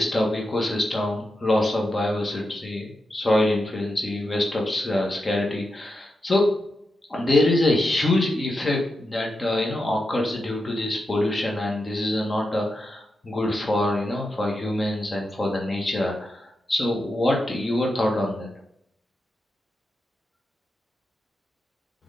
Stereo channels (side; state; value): both; normal; correlation 0.88